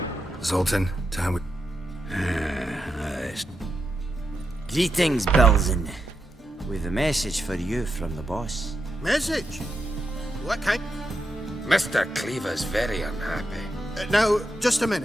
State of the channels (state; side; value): normal; both; correlation 0.85